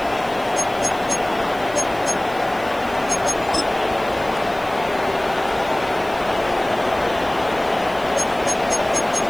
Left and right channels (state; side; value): noise; right; hiss, 21 dB below the sound